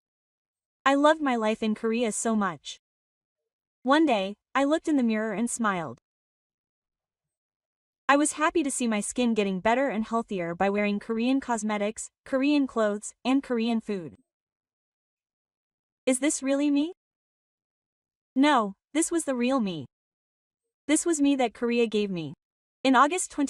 I loved my life in Korea so much. One day, I looked in the mirror and smiled. I was happy to see my skin getting better and healthier by wearing Korean cosmetics, Korean clothes, and Korean food. Is this really me? No, this was the real me. This was me that Korea gave me. In August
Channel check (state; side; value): identical; both; correlation 1.00